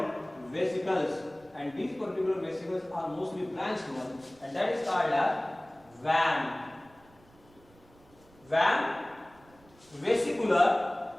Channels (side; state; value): right; noise; rumble, 28 dB below the sound